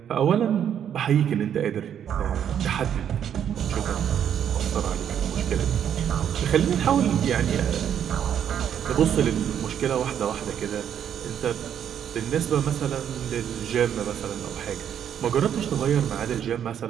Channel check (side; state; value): left; quieter; 9.2 dB